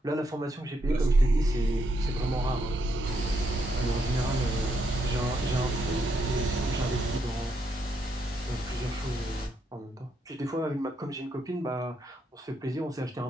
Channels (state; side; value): normal; both; correlation 0.78